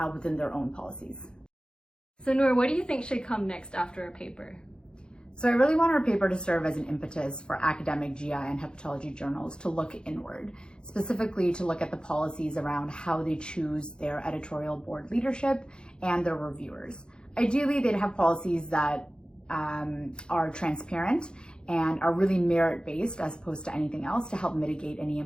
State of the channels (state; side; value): late; right; 0.049 ms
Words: within their own policies. So Noor, what do you think should come next after a paper? So I really want our paper to serve as an impetus for academic GI and hepatology journals to look inward, specifically to look at the policies around how they choose their editorial board leadership and their reviewers. Ideally, they'd have policies that are transparent and are really merit-based as opposed to anything else to help mitigate any